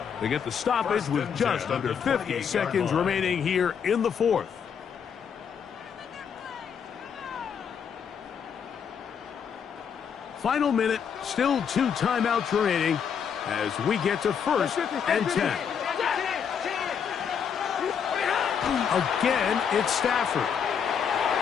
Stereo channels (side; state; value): right; quieter; 7.3 dB